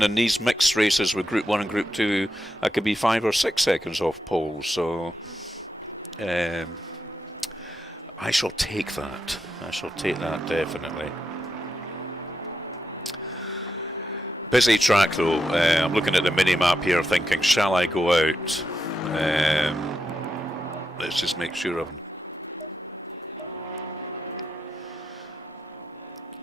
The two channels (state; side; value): normal; both; correlation 0.85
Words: in these mixed races with Group 1 and Group 2, I could be 5 or 6 seconds off pole. So I shall take that. I shall take that definitely. Busy track though. I'm looking at the mini-map here thinking, shall I go out? Let's just make sure of...